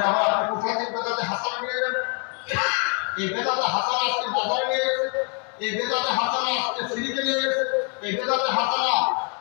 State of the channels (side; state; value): right; quieter; 37.9 dB